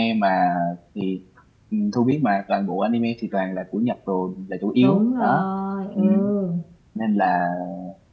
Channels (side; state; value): both; identical; correlation 1.00